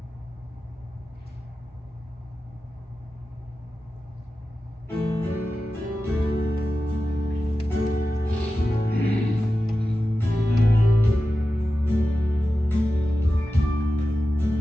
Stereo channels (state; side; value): normal; both; correlation 0.93